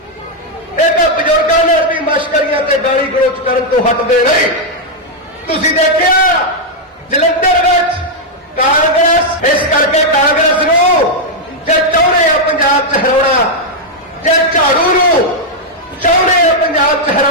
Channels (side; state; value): both; normal; correlation -0.03